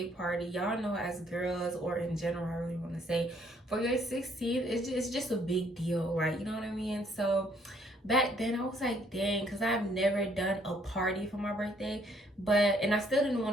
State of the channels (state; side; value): normal; both; correlation 0.66